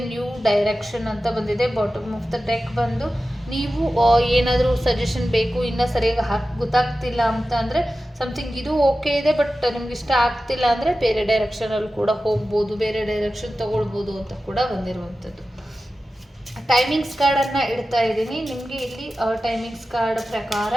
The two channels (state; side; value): normal; both; correlation 0.94